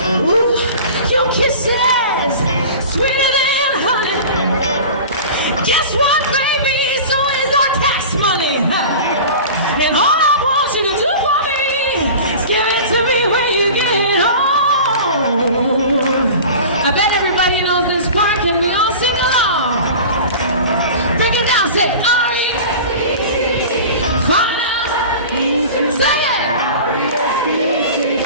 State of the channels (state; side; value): inverted; both; correlation -0.36